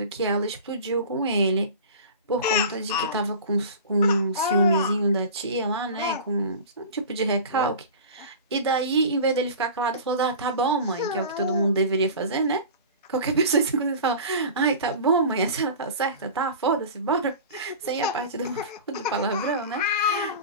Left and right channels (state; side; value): inverted; both; correlation -0.35